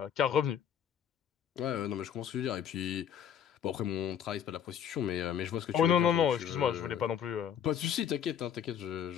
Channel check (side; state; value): right; quieter; 8.8 dB